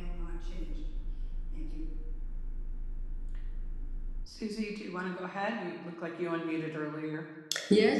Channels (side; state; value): both; identical; correlation 1.00